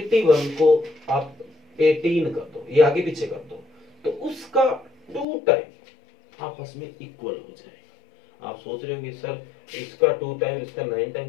को आप 18 कर दो, ये आगे पीछे कर दो, तो उसका 2 टाइम आपस में इक्वल हो जाएगा। आप सोच रहे होंगे सर इसका 2 टाइम इसका 9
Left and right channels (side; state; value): right; drops out; at 5.2 s